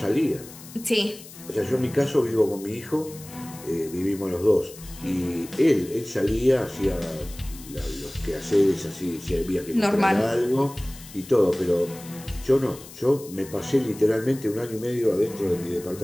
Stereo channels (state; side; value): noise; left; hiss, 17 dB below the sound